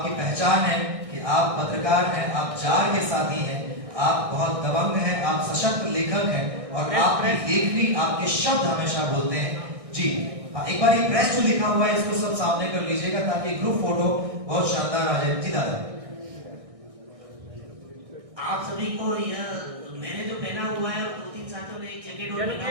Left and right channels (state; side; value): late; left; 1.6 ms